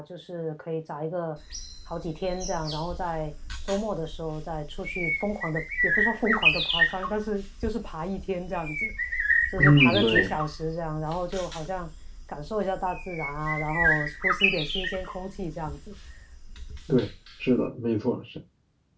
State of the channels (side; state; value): both; identical; correlation 1.00